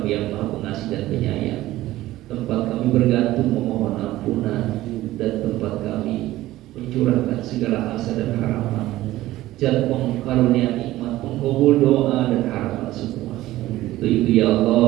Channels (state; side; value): quieter; left; 16.0 dB